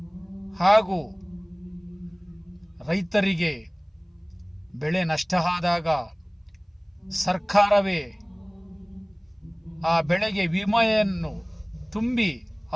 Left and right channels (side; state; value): both; identical; correlation 1.00